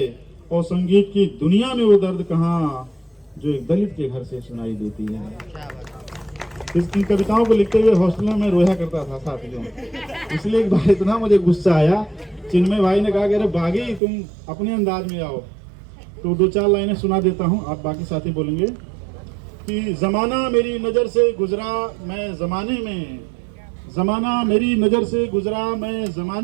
और संगीत की दुनिया में वो दर्द कहाँ, जो एक दलित के घर से सुनाई देती है। इन कविताओं को लिखते हुए हॉस्टल में रोया करता था साथियों। इसलिए एक बार इतना मुझे गुस्सा आया, चिन्मय भाई ने कहा कि अरे बागी तुम अपने अंदाज में आओ, तो 2-4 लाइनें सुना देता हूँ, आप बाकी साथी बोलेंगे कि जमाना मेरी नज़र से गुजरा मैं जमाने में, जमाना मेरी नज़र से गुजरा मैं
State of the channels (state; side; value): drops out; left; at 14.0 s